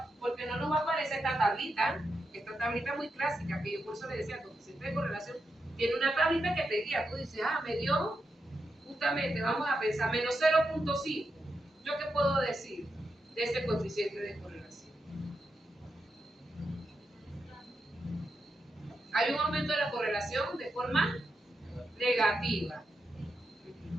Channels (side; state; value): both; normal; correlation 0.86